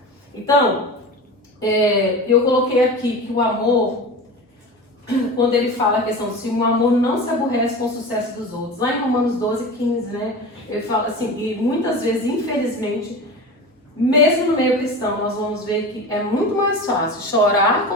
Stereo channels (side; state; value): both; normal; correlation 0.30